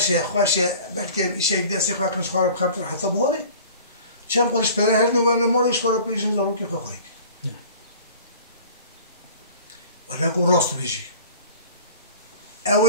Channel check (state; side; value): inverted; both; correlation -0.45